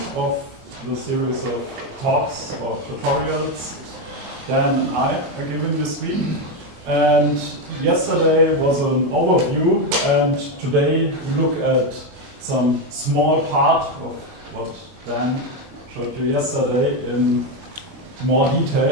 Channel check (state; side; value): late; left; 25 ms